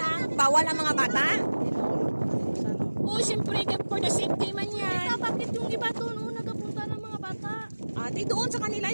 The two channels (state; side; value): inverted; both; correlation -1.00